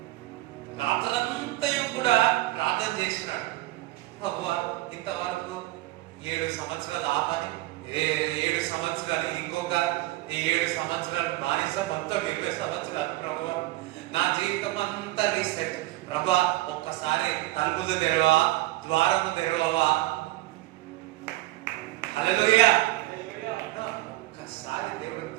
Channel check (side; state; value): left; quieter; 18.3 dB